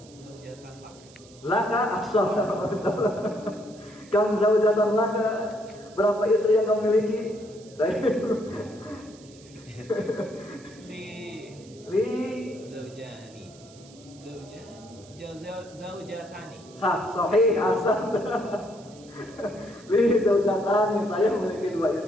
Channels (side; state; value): right; noise; hiss, 24 dB below the sound